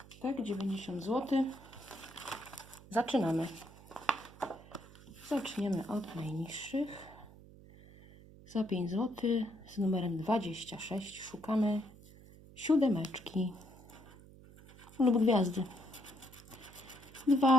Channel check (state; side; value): noise; right; hum, 20 dB below the sound